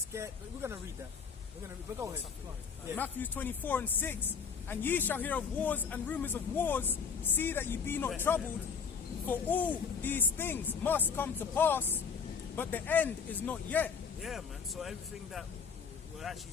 We're going to read that. But go ahead. Yeah. Matthew 24:6. And ye shall hear of wars and rumors of wars. See that ye be not troubled. For all these things must come to pass, but the end is not yet. Yeah, man. So everything that we're actually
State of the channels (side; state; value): right; quieter; 6.1 dB